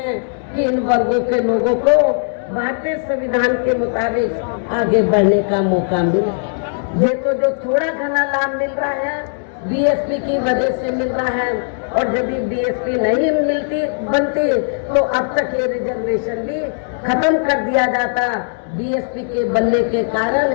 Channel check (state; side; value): silent; right; digital silence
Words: कि इन वर्गों के लोगों को भारतीय संविधान के मुताबिक आगे बढ़ने का मौका मिले। ये तो जो थोड़ा घना लाभ मिल रहा है BSP की वजह से मिल रहा है, और यदि BSP नहीं बनती तो अब तक ये रिजर्वेशन भी खत्म कर दिया जाता। BSP के बनने के कारण